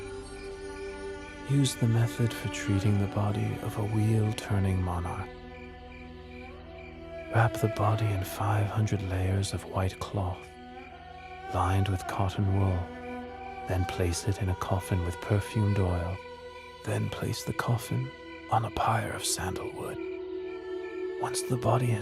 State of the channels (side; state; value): both; identical; correlation 1.00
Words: Use the method for treating the body of a wheel-turning monarch. Wrap the body in 500 layers of white cloth, lined with cotton wool. Then place it in a coffin with perfumed oil. Then place the coffin on a pyre of sandalwood. Once the body